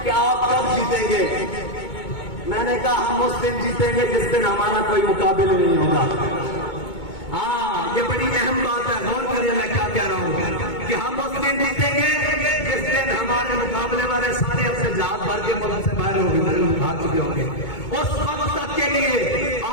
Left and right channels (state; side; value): late; right; 2.2 ms